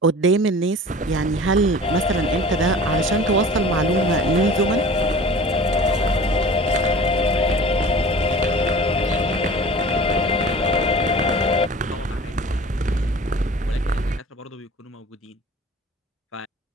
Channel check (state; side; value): normal; both; correlation 0.41